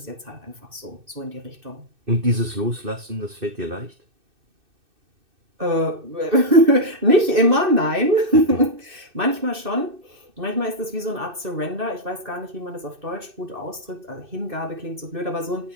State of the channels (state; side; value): late; left; 2.6 ms